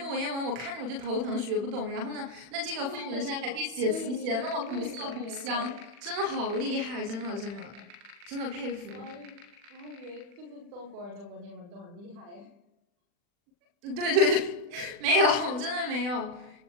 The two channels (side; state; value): left; late; 40 ms